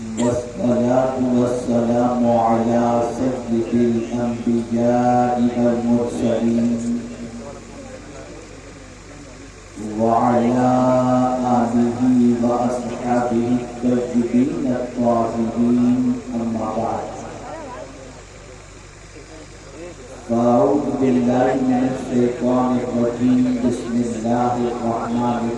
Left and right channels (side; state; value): both; identical; correlation 1.00